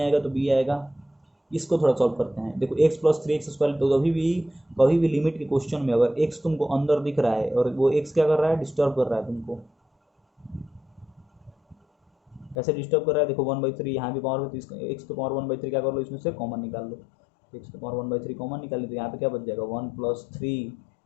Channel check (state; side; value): drops out; right; at 12.6 s